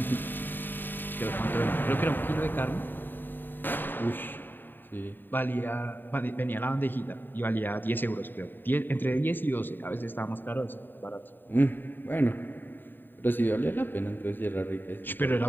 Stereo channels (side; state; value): right; late; 0.093 ms